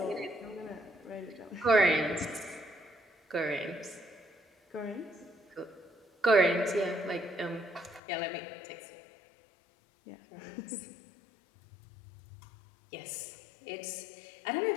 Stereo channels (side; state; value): right; drops out; at 8.0 s